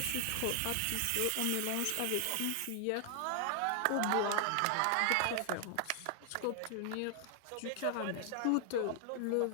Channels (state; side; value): different; both; correlation 0.00